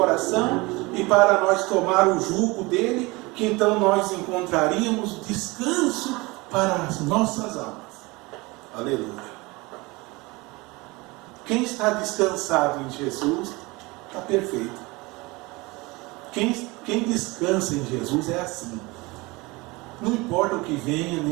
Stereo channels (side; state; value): left; quieter; 23.9 dB